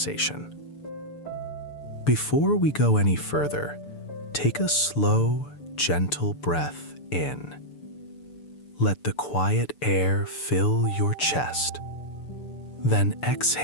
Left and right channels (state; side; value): late; right; 6.9 ms